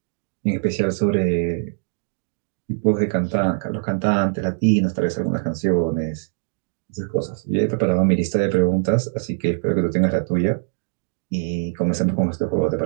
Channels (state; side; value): silent; left; digital silence